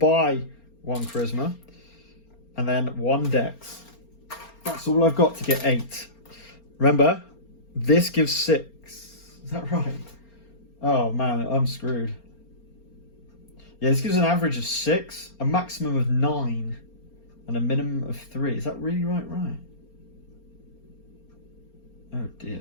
1 charisma. And then 1 dex. That's all I've got to get 8. Remember, this gives 6. Is that right? Oh man, I'm screwed. Yeah, this gives an average of 6, a maximum of 9, and a minimum of 3. Is that really right? Oh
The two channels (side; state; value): right; late; 4.3 ms